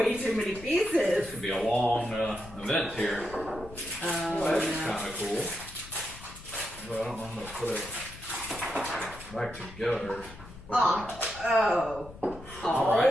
too many This pieces. could be a long event here. Well, that's kind of cool. But I don't know how to put it back together. Oh. All right.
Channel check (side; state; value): left; noise; rumble, 17 dB below the sound